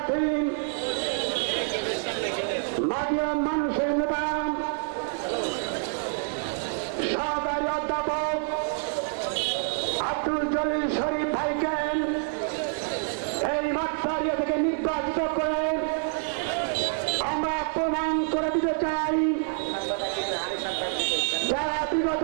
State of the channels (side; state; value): left; silent; 60 dB below the other